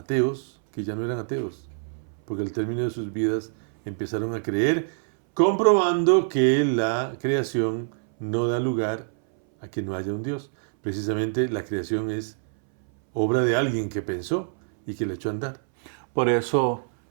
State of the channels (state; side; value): silent; left; 62 dB below the other